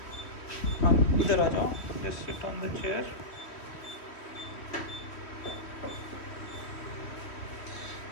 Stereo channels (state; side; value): late; right; 3.1 ms